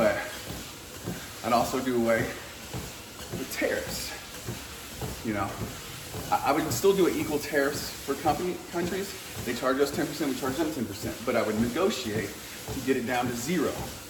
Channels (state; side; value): identical; both; correlation 1.00